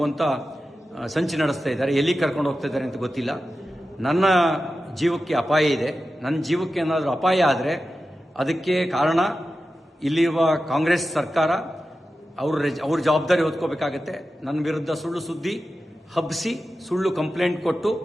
ಸಂಚು ನಡೆಸ್ತಾ ಇದ್ದಾರೆ. ಎಲ್ಲಿಗೆ ಕರ್ಕೊಂಡು ಹೋಗ್ತಾ ಇದ್ದಾರೆ ಅಂತ ಗೊತ್ತಿಲ್ಲ. ನನ್ನ ಜೀವಕ್ಕೆ ಅಪಾಯ ಇದೆ. ನನ್ನ ಜೀವಕ್ಕೆ ಏನಾದರೂ ಅಪಾಯ ಆದರೆ ಅದಕ್ಕೆ ಕಾರಣ ಇಲ್ಲಿರುವ ಕಾಂಗ್ರೆಸ್ ಸರ್ಕಾರ. ಅವ್ರ ಜವಾಬ್ದಾರಿ ಹೊತ್ಕೋಬೇಕಾಗತ್ತೆ. ನನ್ನ ವಿರುದ್ಧ ಸುಳ್ಳು ಸುದ್ದಿ ಹಬ್ಬಿಸಿ ಸುಳ್ಳು ಕಂಪ್ಲೇಂಟ್ ಕೊಟ್ಟು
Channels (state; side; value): normal; both; correlation 0.92